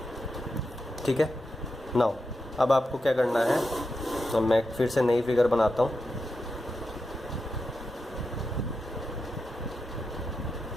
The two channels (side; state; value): both; normal; correlation 0.88